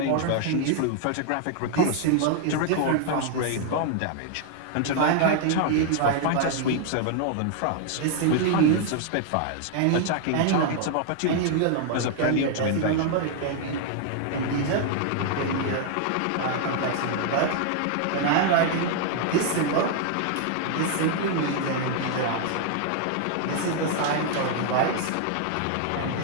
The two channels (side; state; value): both; different; correlation 0.00